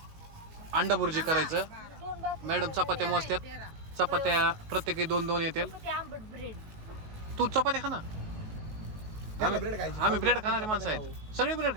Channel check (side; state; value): left; late; 19 ms